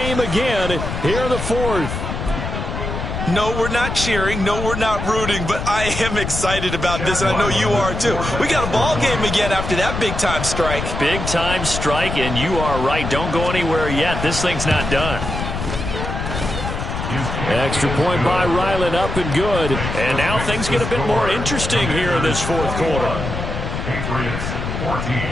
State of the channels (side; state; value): left; noise; rumble, 4 dB below the sound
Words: again here in the fourth. No, we're not cheering. No, we're not rooting. But I am excited about this, and I know you are too. We got a ball game again after that big-time strike. Big-time strike, and you are right. Don't go anywhere yet. This thing's not done. Extra point by Ryland, up and good. And now things get a bit more interesting here in this fourth quarter. Patriots 14.